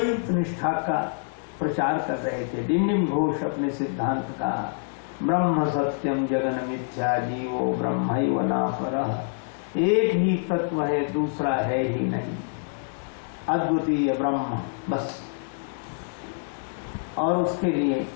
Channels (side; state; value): right; silent; digital silence